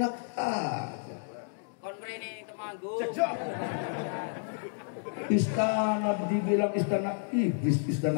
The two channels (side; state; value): right; silent; digital silence